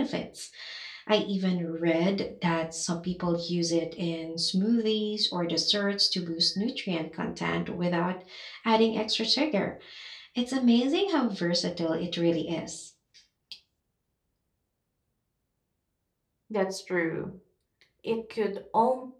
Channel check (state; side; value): identical; both; correlation 1.00